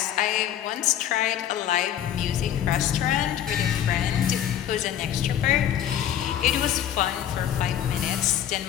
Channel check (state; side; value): quieter; right; 10.6 dB